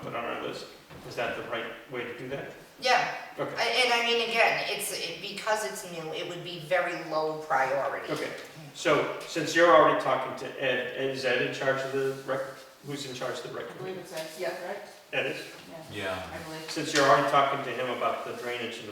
put on our list? Is that the right way to do that? Yeah, Okay, and I mean, again, because it's new, it would be very low priority. okay. So since you're already talking to Ed, is Ed in charge of the rec, who's in charge of the rec I believe committee? it says, Yeah. right? Ed is? Yeah, Yeah. I believe. Since you're already talking to him about the drainage and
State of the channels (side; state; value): both; identical; correlation 1.00